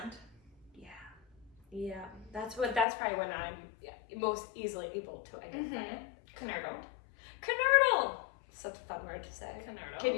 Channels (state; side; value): drops out; right; at 2.9 s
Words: Yeah, that's probably when I'm most easily able to identify it. Canoodled. Canoodle! Such a fun word to say. Canoodle. Can